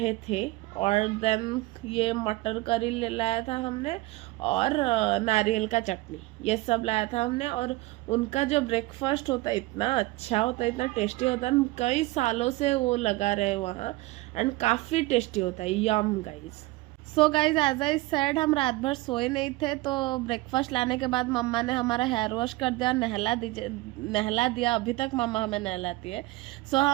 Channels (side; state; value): left; quieter; 20.0 dB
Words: थे। और देन ये मटर करी ले लाया था हमने, और नारियल का चटनी, ये सब लाया था हमने। और उनका जो ब्रेकफास्ट होता है इतना अच्छा होता है, इतना टेस्टी होता है। कई सालों से वो लगा रहे वहाँ, एंड काफ़ी टेस्टी होता है। Yum guys. So guys, as I said, हम रात भर सोए नहीं थे, तो ब्रेकफास्ट लाने के बाद मम्मा ने हमारा हेयर वॉश कर दिया, नहला दिया। अभी तक मम्मा हमें नहलाती है। सो